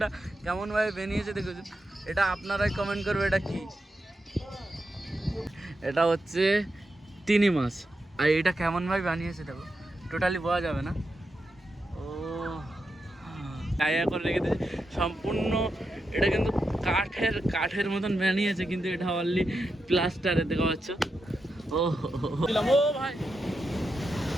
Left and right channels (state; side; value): normal; both; correlation 0.87